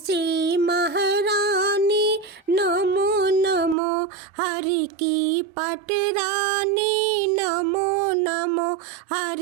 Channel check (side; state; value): left; drops out; at 3.8 s